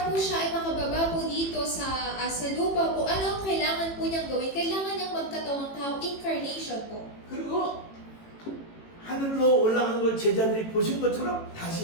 po siya ay makababa po dito sa lupa po, ano ang kailangan po niyang gawin? Kailangan niyang magkatawang tao, incarnation po. 그리고 하늘로 올라가는 걸 제자들이 보신 것처럼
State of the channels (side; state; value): right; late; 18 ms